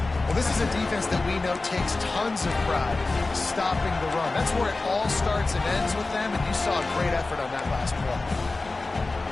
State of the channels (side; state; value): right; quieter; 3.4 dB